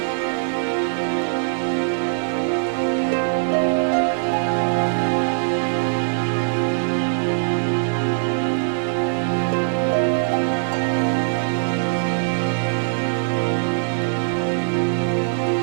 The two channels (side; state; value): left; silent; digital silence